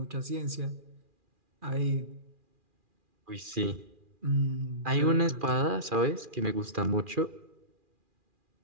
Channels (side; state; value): left; late; 2.4 ms